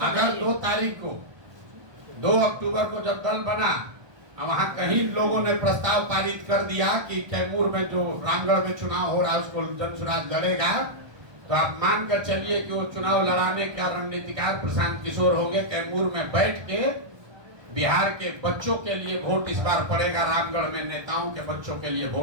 अगर 2 तारीख को, 2 अक्टूबर को जब दल बना, वहाँ कहीं लोगों ने प्रस्ताव पारित कर दिया कि कैमूर में जो रामगढ़ में चुनाव हो रहा है उसको जनसुराज लड़ेगा, तो आप मान कर चलिए कि वो चुनाव लड़ाने का रणनीतिकार प्रशांत किशोर हो गए। कैमूर में बैठ के बिहार के बच्चों के लिए वोट इस बार पड़ेगा, रामगढ़ में नेताओं के बच्चों के लिए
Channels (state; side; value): late; left; 1.2 ms